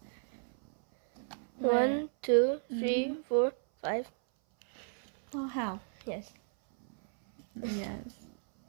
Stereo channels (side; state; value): left; silent; 56 dB below the other